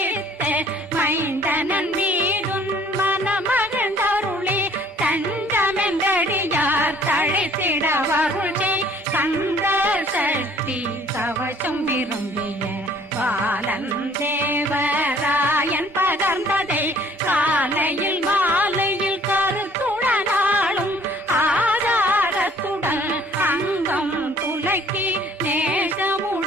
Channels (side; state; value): both; normal; correlation 0.57